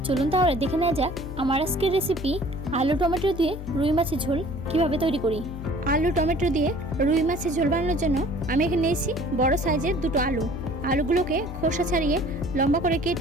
চলুন তাহলে দেখে নেওয়া যাক আমার আজকের রেসিপি आलू टमेटो दिए रुई माछेर झोल किभाबे तैरी करी। आलू टमेटो दिए रुई माछेर झोल बानाনোর জন্য আমি এখানে নিয়েছি বড় সাইজের দুটো আলু। আলুগুলোকে খোসা ছাড়িয়ে লম্বা করে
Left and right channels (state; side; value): noise; left; hum, 10 dB below the sound